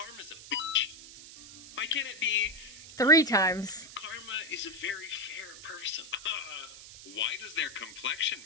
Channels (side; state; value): right; noise; hiss, 16 dB below the sound